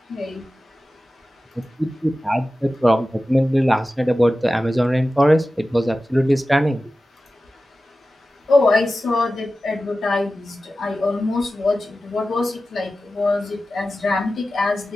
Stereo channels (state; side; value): normal; both; correlation 0.95